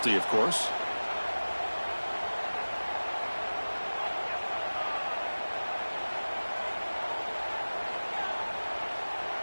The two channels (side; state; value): both; inverted; correlation -1.00